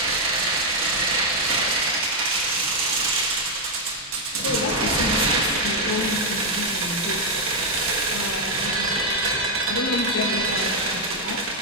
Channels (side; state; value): both; normal; correlation 0.00